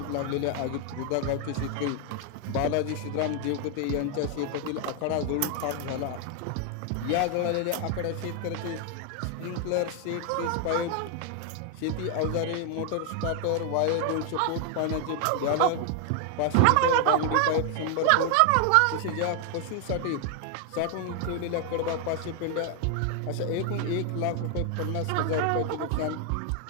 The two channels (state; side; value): different; both; correlation 0.00